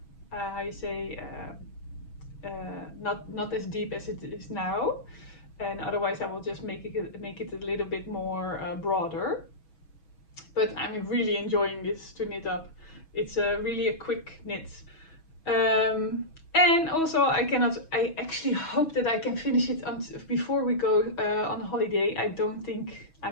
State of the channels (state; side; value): late; right; 6.2 ms